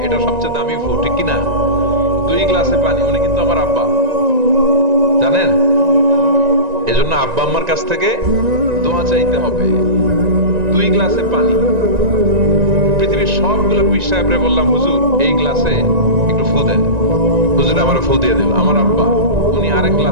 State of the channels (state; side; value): late; left; 1.9 ms